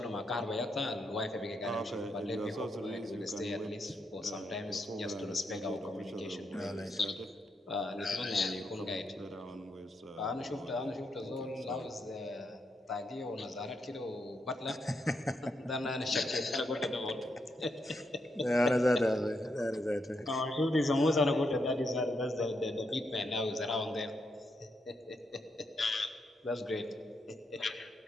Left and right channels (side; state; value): both; normal; correlation 0.81